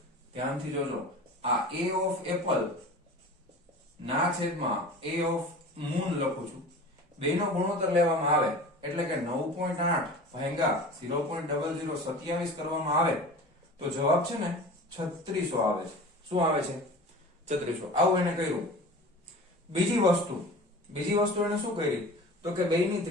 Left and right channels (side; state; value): both; normal; correlation 0.37